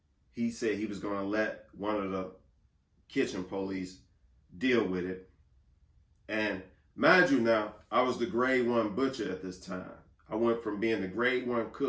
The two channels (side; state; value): both; identical; correlation 1.00